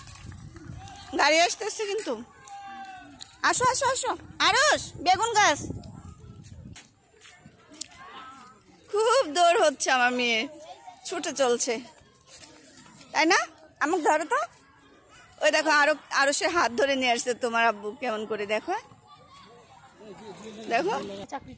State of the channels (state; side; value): identical; both; correlation 1.00